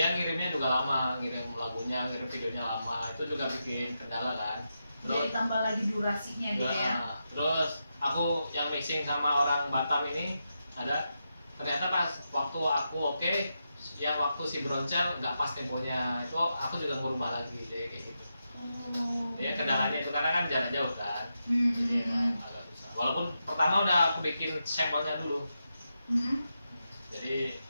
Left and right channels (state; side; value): inverted; both; correlation -0.87